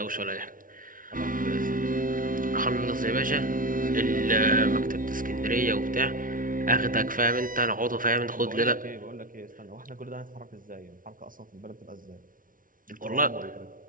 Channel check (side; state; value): left; late; 0.39 ms